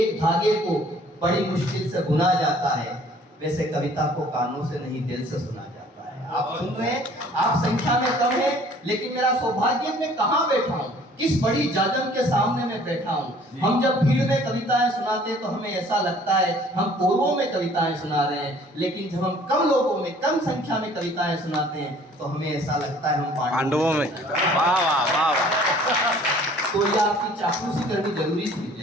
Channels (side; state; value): both; normal; correlation 0.54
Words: धागे को बड़ी मुश्किल से बुना जाता है, वैसे कविता को कानों से नहीं दिल से सुना जाता है। आप सुन रहे हैं, आप संख्या में कम है, लेकिन मेरा सौभाग्य मैं कहाँ बैठा हूँ, किस बड़ी जाजम के सामने मैं बैठा हूँ। हम जब भीड़ में कविताएं सुनाते हैं तो हमें ऐसा लगता है हम कोरों में कविताएं सुना रहे हैं, लेकिन जब हम कम लोगों में, कम संख्या में कविताएं सुनाते हैं तो हमें ऐसा लगता है हम पांडवों में। वाह वाह वाह वाह। तो ये आपकी चापलूसी करनी जरूरी